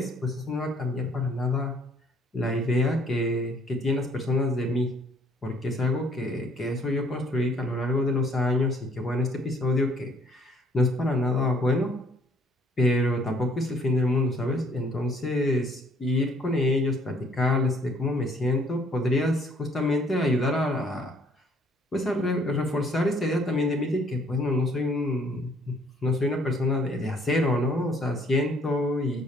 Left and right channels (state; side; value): normal; both; correlation 0.62